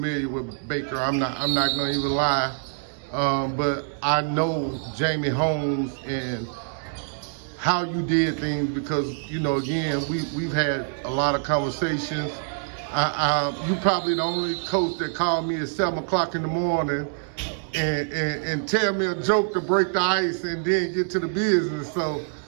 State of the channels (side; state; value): left; silent; digital silence